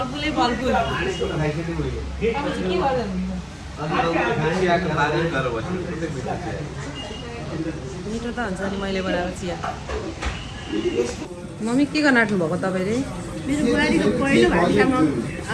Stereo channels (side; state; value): both; identical; correlation 1.00